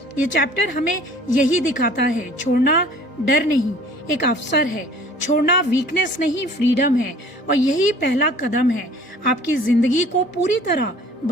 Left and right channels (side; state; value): both; normal; correlation 0.50